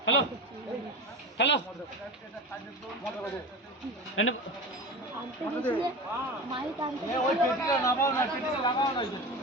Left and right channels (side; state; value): both; normal; correlation 0.30